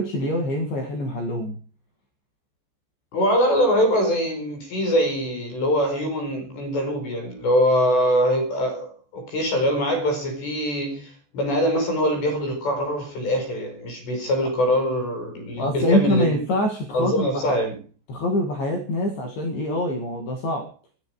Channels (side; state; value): right; late; 14 ms